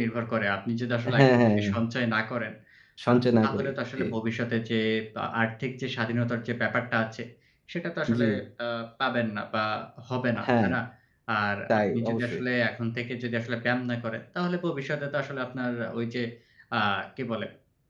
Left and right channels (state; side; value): identical; both; correlation 1.00